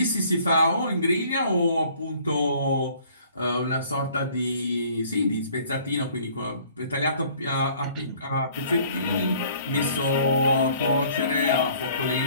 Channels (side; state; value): both; inverted; correlation -0.55